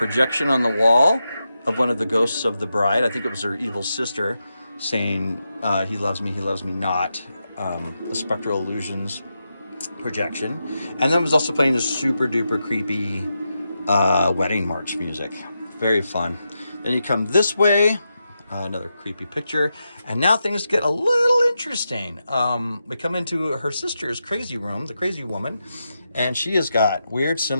on the wall of one of the ghosts of the bride. I think it was her evil sister saying, he loves me not. A spectral illusions projection. And then was also playing this super duper creepy wedding march music. Very fun. Then you come this way, another creepy picture. And now things get a little interesting. We come into her sister's crazy room, the crazy woman, and she has got weird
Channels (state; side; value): inverted; both; correlation -0.87